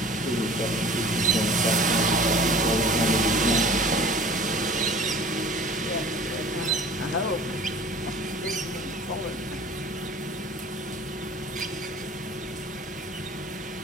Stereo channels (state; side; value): normal; both; correlation 0.44